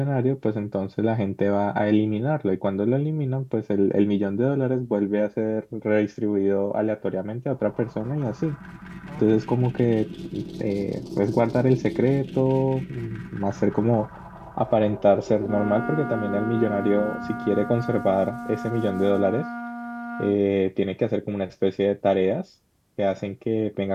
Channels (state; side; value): identical; both; correlation 1.00